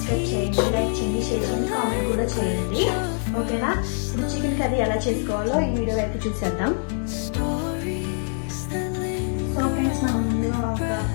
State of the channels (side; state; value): right; silent; 62 dB below the other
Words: చేయండి, లైక్ చేయండి, షేర్ చేయండి, కామెంట్ కూడా చేయండి. ఓకేనా? ఇప్పుడు చికెన్ కర్రీ ఎలా చేసుకోవాలో ఈ వీడియో అయితే చూసేద్దాం. సో ఫ్రెండ్స్, నా ముందుగా ఒక